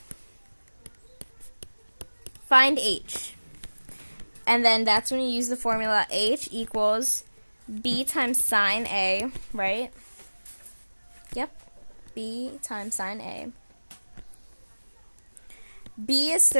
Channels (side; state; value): both; inverted; correlation -1.00